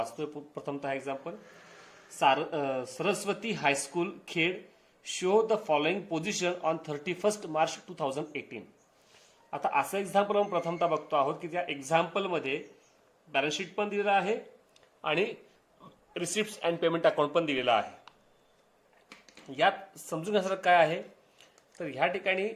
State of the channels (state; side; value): identical; both; correlation 1.00